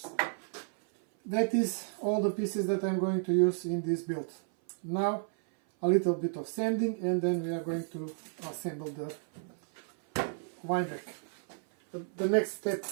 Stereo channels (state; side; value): silent; left; 56 dB below the other